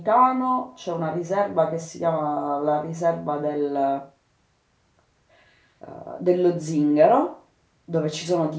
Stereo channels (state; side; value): identical; both; correlation 1.00